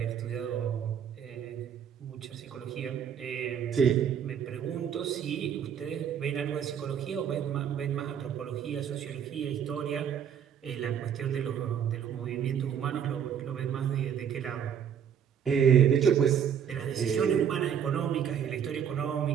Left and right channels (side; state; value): left; quieter; 8.4 dB